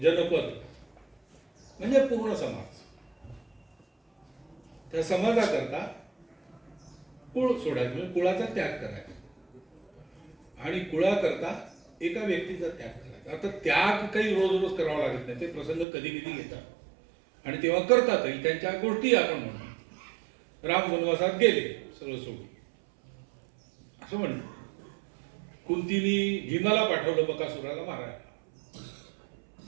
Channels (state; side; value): drops out; left; at 15.9 s